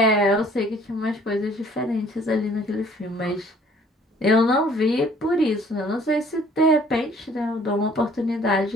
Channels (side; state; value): both; normal; correlation 0.56